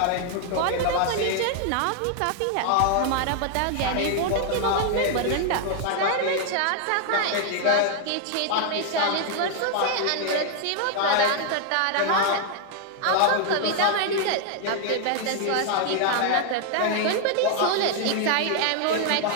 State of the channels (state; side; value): different; both; correlation 0.00